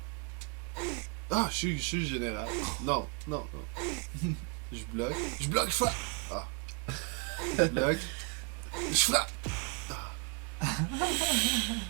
Ah, je suis le général. Non, non, non. Je bloque. Je bloque, je frappe. Ah. Je bloque. Je frappe.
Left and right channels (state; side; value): quieter; left; 34.9 dB